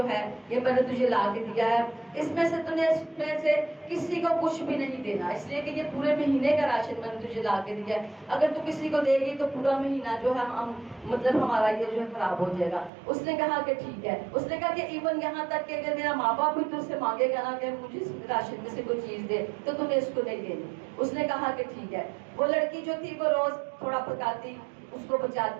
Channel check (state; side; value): drops out; left; at 12.9 s